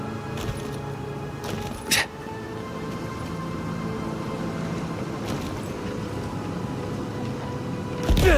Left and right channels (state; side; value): identical; both; correlation 1.00